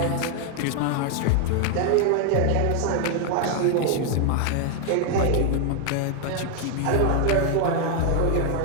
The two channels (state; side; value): different; both; correlation 0.00